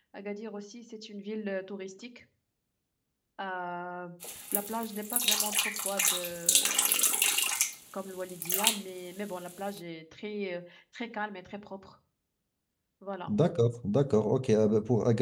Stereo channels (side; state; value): both; identical; correlation 1.00